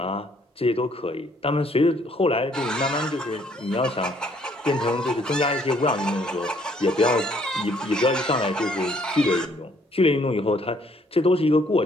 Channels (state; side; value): normal; both; correlation 0.64